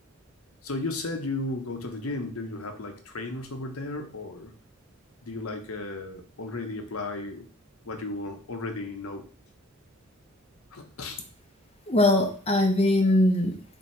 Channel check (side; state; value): both; normal; correlation 0.53